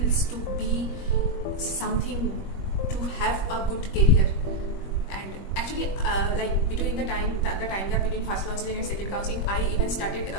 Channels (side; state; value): right; late; 21 ms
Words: to be something, to have a good career. And actually like between the time gap between first counseling and second counseling, I even started